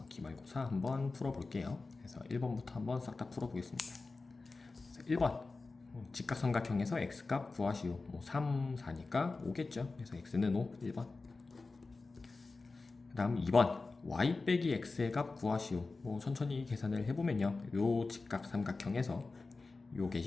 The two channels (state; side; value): quieter; right; 3.8 dB